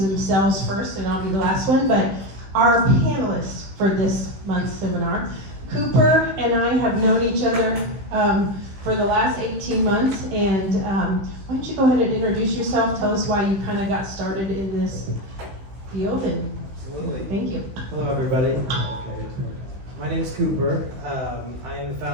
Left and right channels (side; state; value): left; late; 16 ms